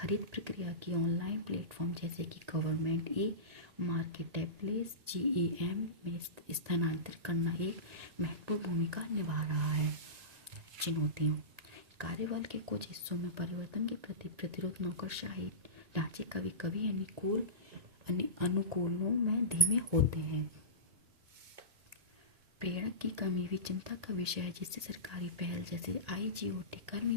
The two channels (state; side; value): late; left; 1.8 ms